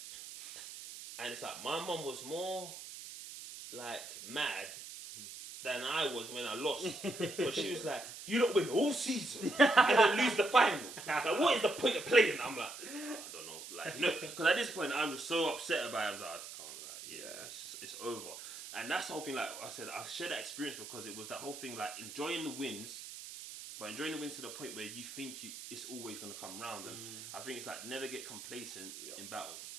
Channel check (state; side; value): noise; right; hiss, 11 dB below the sound